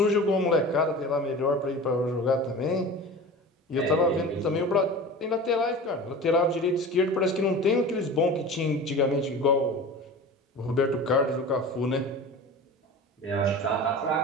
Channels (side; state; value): both; normal; correlation 0.35